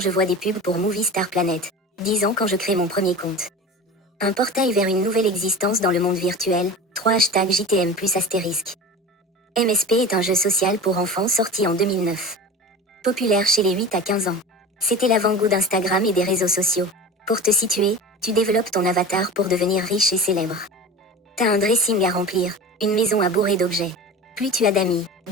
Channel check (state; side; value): normal; both; correlation 0.33